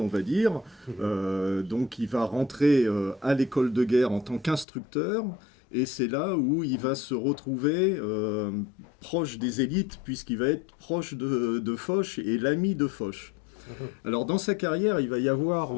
va dire, donc il va rentrer à l'école de guerre en tant qu'instructeur. Et c'est là où il va se retrouver proche des élites, puisqu'il va être proche de Foch et l'ami de Foch. Alors dans sa carrière, il va y avoir,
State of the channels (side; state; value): right; drops out; at 4.7 s